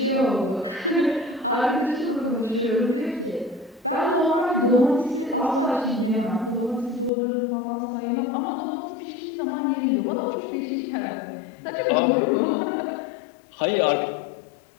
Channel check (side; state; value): right; drops out; at 7.1 s